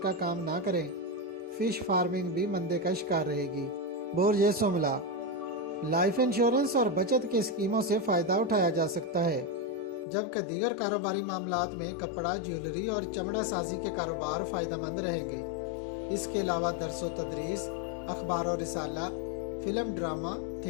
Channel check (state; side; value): drops out; right; at 10.1 s